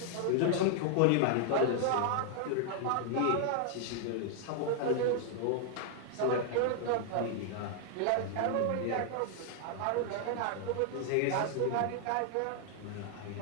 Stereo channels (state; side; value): different; both; correlation 0.00